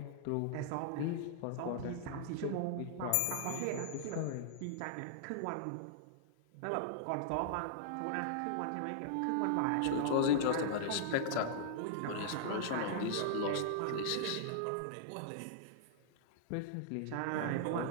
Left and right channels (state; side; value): different; both; correlation -0.01